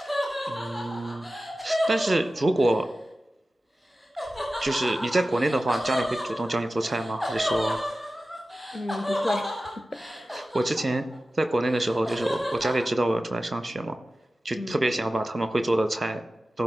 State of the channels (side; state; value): both; normal; correlation 0.95